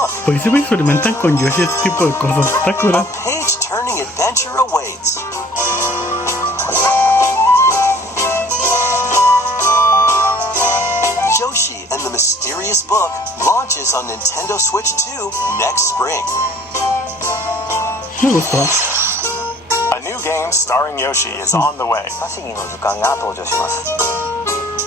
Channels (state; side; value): normal; both; correlation 0.53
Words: Pues si me experimentan con Yoshi este tipo de cosas, está cura. A page-turning adventure awaits. Yoshi and the Mysterious Book launches on Nintendo Switch 2 next spring. Me gustó. A new game starring Yoshi is on the way.